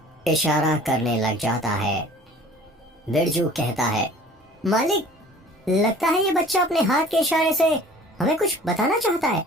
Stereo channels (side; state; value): both; normal; correlation 0.48